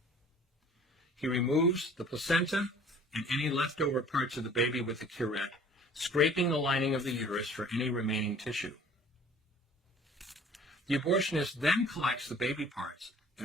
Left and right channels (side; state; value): both; normal; correlation 0.50